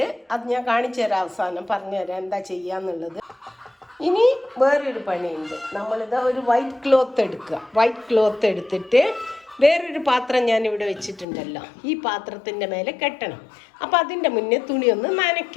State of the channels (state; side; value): drops out; right; at 11.2 s